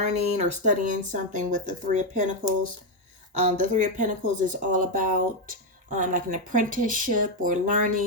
or studying something with the Three of Pentacles. The Three of Pentacles is all about like an apprenticeship or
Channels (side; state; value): both; normal; correlation 0.05